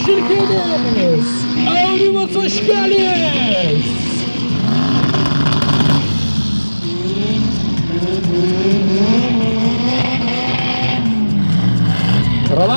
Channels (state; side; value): inverted; both; correlation -1.00